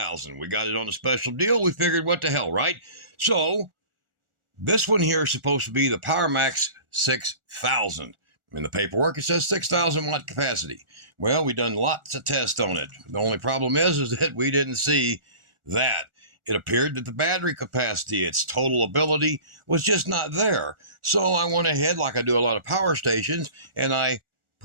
We got it on a special deal. We figured what the hell, right? So this one here is supposed to be the PowerMax 6000. In the paperwork it says 6,000 watt capacity. Well, we done lots of tests on it. The only problem is that we didn't see that. It appeared that the battery capacity, its total ability, was just not there. So I went ahead, like I do a lot of power stations, and I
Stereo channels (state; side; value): late; left; 1.4 ms